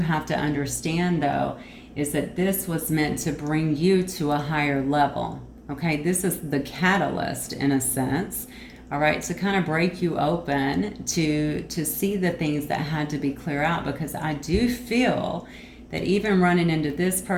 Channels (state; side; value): identical; both; correlation 1.00